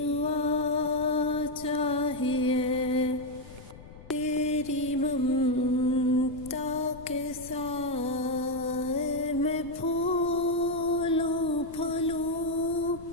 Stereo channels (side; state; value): left; noise; rumble, 17 dB below the sound